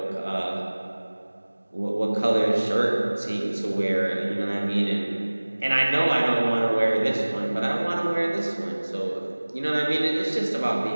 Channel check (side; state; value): both; inverted; correlation -1.00